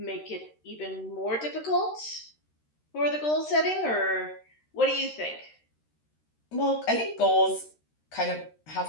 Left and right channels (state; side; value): late; right; 13 ms